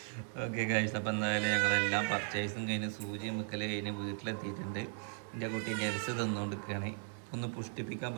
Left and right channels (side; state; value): left; silent; 53 dB below the other